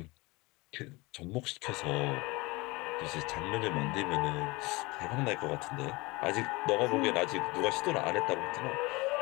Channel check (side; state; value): right; quieter; 23.9 dB